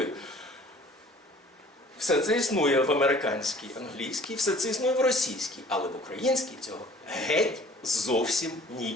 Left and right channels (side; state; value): both; normal; correlation 0.50